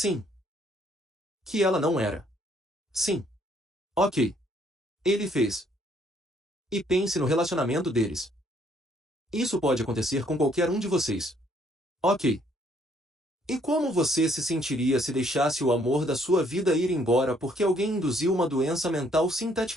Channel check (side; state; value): both; normal; correlation 0.66